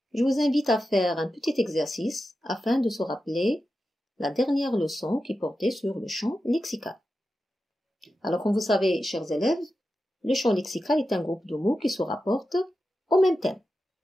je vous invite à faire un petit exercice afin de se rappeler la dernière leçon qui portait sur le champ lexical. Alors comme vous savez, chers élèves, le champ lexical est un groupe de mots qui se rapportent au même thème.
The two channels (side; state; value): both; normal; correlation 0.91